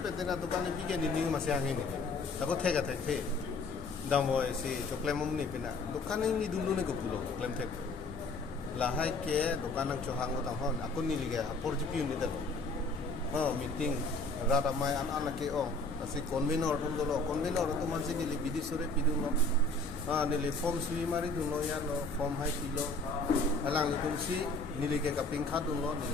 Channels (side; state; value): right; quieter; 3.2 dB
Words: pe dena dukan ni bige ni masih angin ni ako thega the damo si choklem ni pina dukan ni dulu ni ko pulo choklem the lahai ke dukan ang chohang ko tang hon ako ni liga porjipi ni dalo meeting rata mai anak ke asi convenor tum dolo convenor to mansi ni li bidisore piduno ni li form sui mari duno ya no form hai pilo alang li tum si ni li ke kaping khat duno